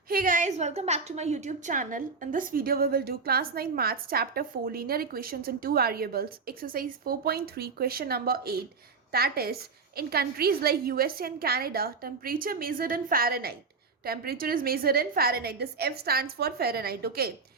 Hey guys, welcome back to my YouTube channel. In this video, we will do class 9 maths chapter 4 linear equations in two variables, exercise 4.3, question number 8. That is, in countries like USA and Canada, temperature measured in Fahrenheit. Temperature is measured in Fahrenheit. This F stands for Fahrenheit, okay?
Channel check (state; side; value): quieter; left; 4.8 dB